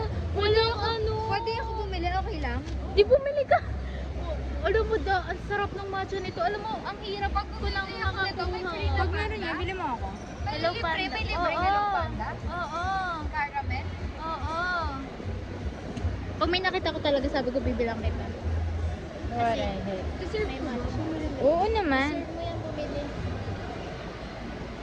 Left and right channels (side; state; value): both; identical; correlation 1.00